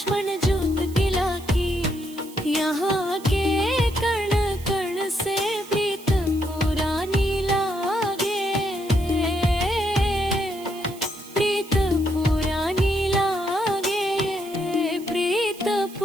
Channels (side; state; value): right; noise; hiss, 19 dB below the sound